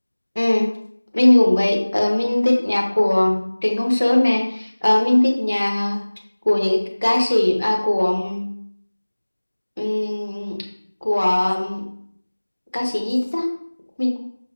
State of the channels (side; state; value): both; inverted; correlation -1.00